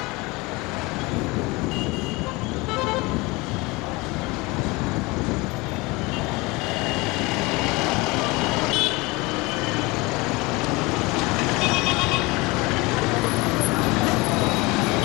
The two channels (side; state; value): right; quieter; 24.1 dB